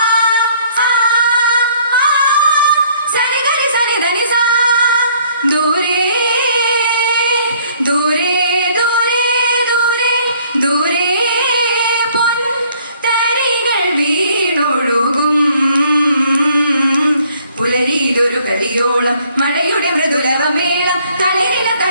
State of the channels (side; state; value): both; inverted; correlation -0.61